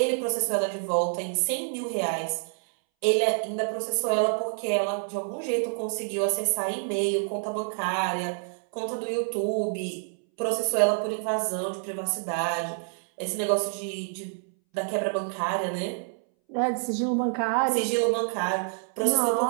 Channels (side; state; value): left; silent; 60 dB below the other